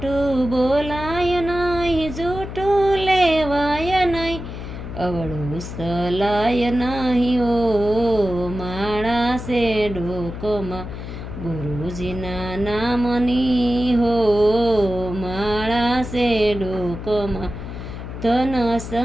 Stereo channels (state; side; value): noise; left; hum, 9 dB below the sound